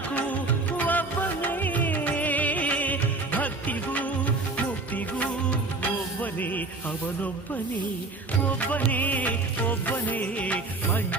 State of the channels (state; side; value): quieter; left; 3.4 dB